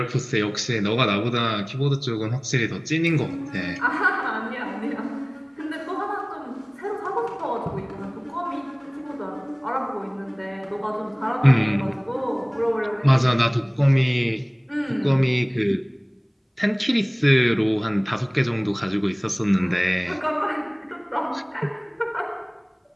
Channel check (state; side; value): identical; both; correlation 1.00